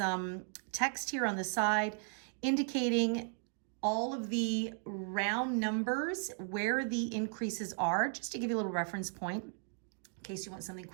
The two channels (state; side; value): silent; left; 54 dB below the other